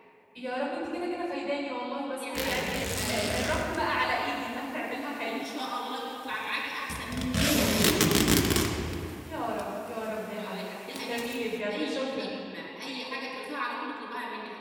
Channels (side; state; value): both; identical; correlation 1.00